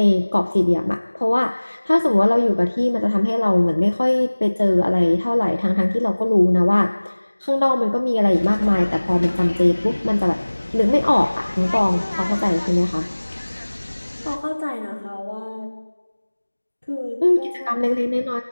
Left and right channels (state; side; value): inverted; both; correlation -1.00